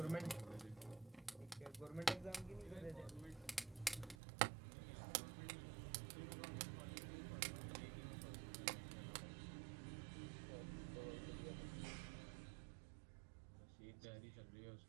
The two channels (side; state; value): left; drops out; at 4.2 s